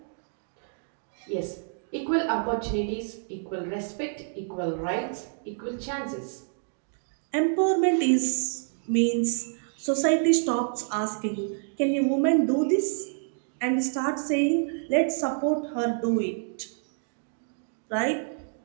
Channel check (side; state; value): left; silent; digital silence